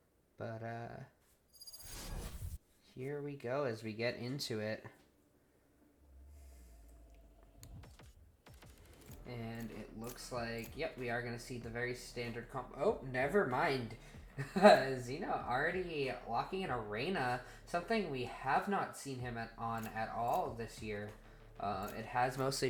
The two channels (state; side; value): identical; both; correlation 1.00